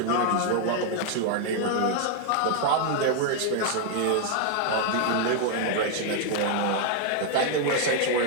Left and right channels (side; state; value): both; different; correlation 0.00